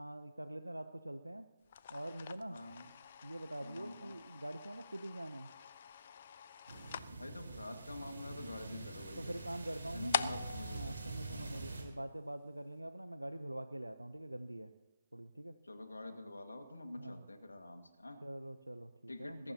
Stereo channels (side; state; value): both; inverted; correlation -0.84